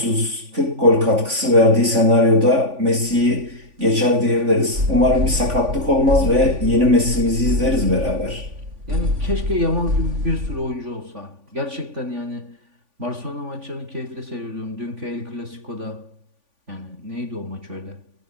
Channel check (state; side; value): late; left; 3.5 ms